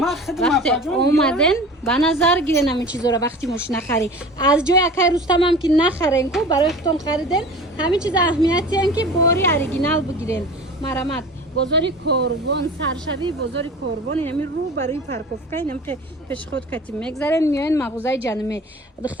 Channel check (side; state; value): both; normal; correlation 0.39